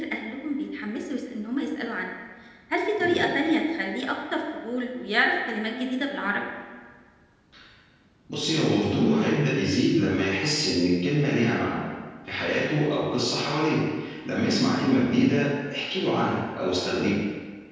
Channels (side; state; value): both; identical; correlation 1.00